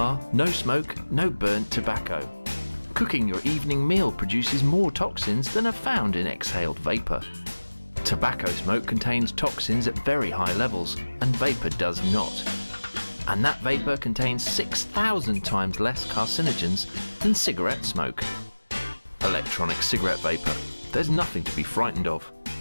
no smoke, no burnt tobacco. Cooking your evening meal produces more toxins than are found in exhaled vapour. Tobacco smoke contains toxins at very high levels, and vapour does not. And that vapour contains 6,000 times less carcinogens than cigarette smoke. Electronic cigarette vapour. There's nothing to be frightened of.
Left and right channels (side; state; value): both; inverted; correlation -1.00